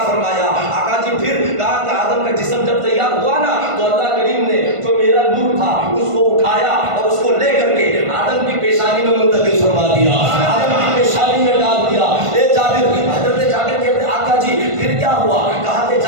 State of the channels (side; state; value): left; late; 1.5 ms